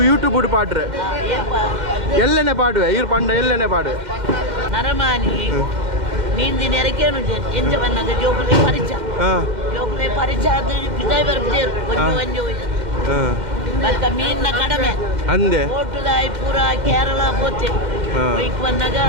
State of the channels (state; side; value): late; left; 2.0 ms